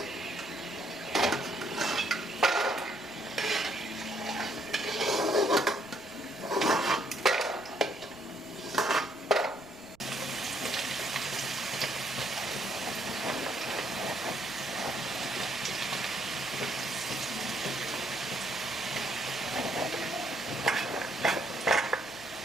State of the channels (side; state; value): right; noise; rumble, 26 dB below the sound